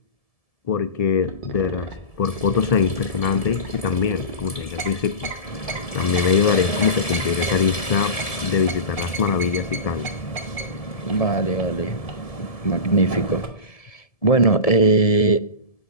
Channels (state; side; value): late; right; 1.7 ms